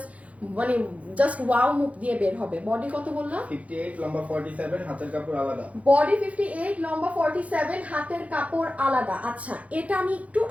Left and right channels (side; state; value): left; late; 0.066 ms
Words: জাস্ট ওয়াও মুখ দিয়ে বের হবে। বডি কত বললাম? 58 লম্বা 47, হাতের কাপড় আলাদা। বডি 58 লম্বা 47, হাতের কাপড় আলাদা। আচ্ছা এটা আমি একটু